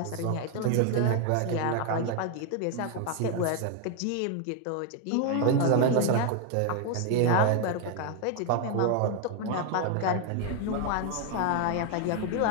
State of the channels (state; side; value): different; both; correlation 0.01